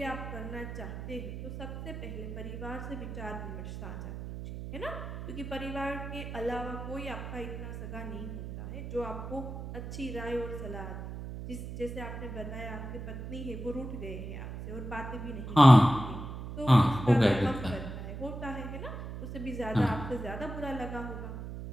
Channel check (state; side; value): noise; right; hum, 8 dB below the sound